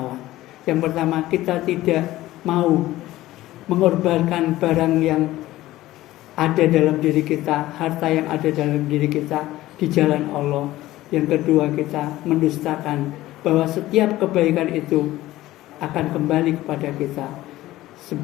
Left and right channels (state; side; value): quieter; right; 16.1 dB